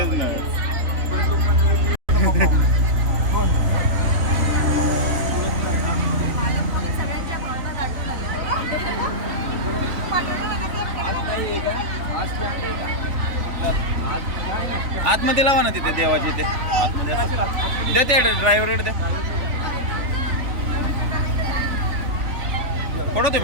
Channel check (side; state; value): left; late; 3.5 ms